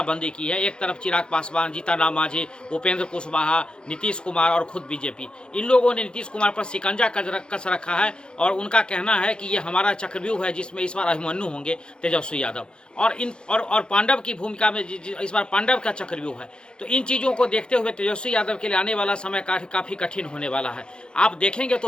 की है, एक तरफ चिराग पासवान, जीतनराम मांझी, उपेंद्र कुशवाहा, नीतीश कुमार और खुद बीजेपी, इन लोगों ने नीतीश कुमार पर शिकंजा कस रखा है और उनका कहना है कि ये हमारा चक्रव्यूह है जिसमें इस बार अभिमन्यु होंगे तेजस्वी यादव और पांडव की भूमिका में इस बार पांडव का चक्रव्यूह है। तो इन चीज़ों को देखते हुए तेजस्वी यादव के लिए आने वाला समय काफ़ी कठिन होने वाला है। आप देखेंगे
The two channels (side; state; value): right; late; 0.050 ms